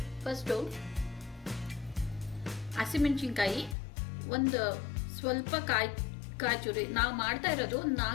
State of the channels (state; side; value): drops out; right; at 3.8 s